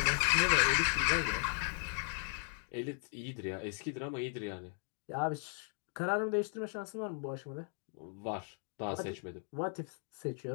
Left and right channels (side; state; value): right; silent; 53 dB below the other